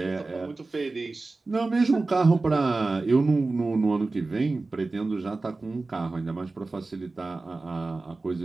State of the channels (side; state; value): left; quieter; 3.5 dB